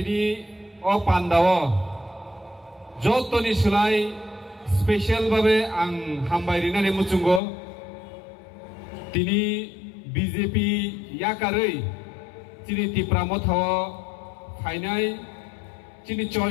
o pandao jotoni sulai special babe ang hambai rinani muchungo tini BJP yakarei chini tipramo thaw phainai chini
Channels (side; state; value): right; drops out; at 7.4 s